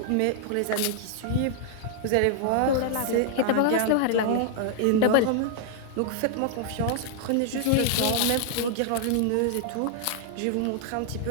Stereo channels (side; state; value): both; different; correlation -0.01